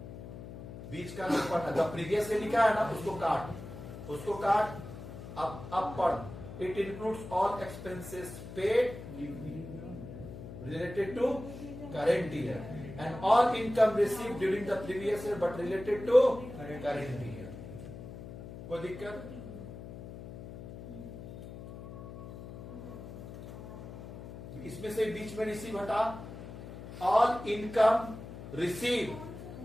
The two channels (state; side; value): noise; left; hum, 12 dB below the sound